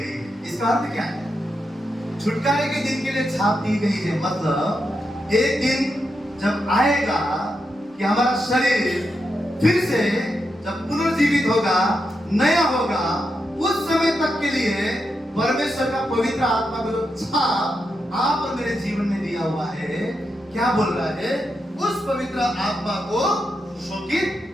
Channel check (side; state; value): both; normal; correlation 0.85